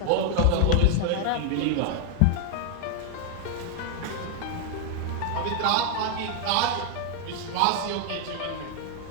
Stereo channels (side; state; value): both; different; correlation 0.00